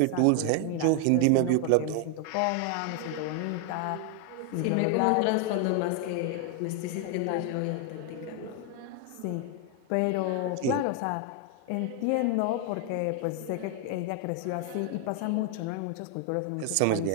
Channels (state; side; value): different; both; correlation 0.00